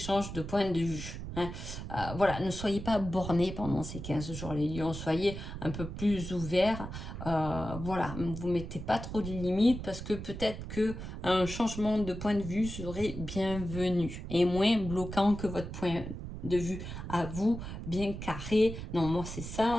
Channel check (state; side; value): noise; right; rumble, 8 dB below the sound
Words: de point de vue. Hein. Voilà, ne soyez pas bornés pendant ces 15 jours, les lions, soyez un peu plus ouverts. Voilà, vous ne mettez pas trop de limites parce que peut-être qu'un changement de point de vue serait bienvenu et moins bloquant que votre point de vue à vous, bien carré. Non, moi c'est